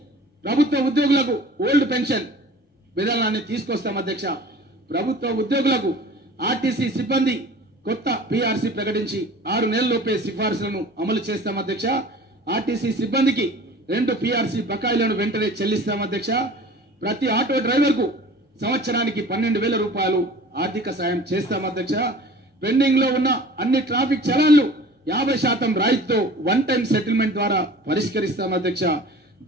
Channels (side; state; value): both; normal; correlation 0.44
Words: ప్రభుత్వ ఉద్యోగులకు ఓల్డ్ పెన్షన్ విధానాన్ని తీసుకొస్తాం అధ్యక్ష. ప్రభుత్వ ఉద్యోగులకు ఆర్టీసీ సిబ్బంది కొత్త పీఆర్సీ ప్రకటించి 6 నెలల్లోపే సిఫార్సులను అమలు చేస్తాం అధ్యక్ష. ఆర్టీసీ సిబ్బందికి 2 పీఆర్సీ బకాయిలను వెంటనే చెల్లిస్తాం అధ్యక్ష. ప్రతి ఆటో డ్రైవర్ కు సంవత్సరానికి 12,000 రూపాయలు ఆర్థిక సాయం చేస్తాం అధ్యక్ష. పెండింగ్ లో ఉన్న అన్ని ట్రాఫిక్ చలాన్లు 50% రాయితీతో వన్ టైం సెటిల్మెంట్ ద్వారా పరిష్కరిస్తాం అధ్యక్ష.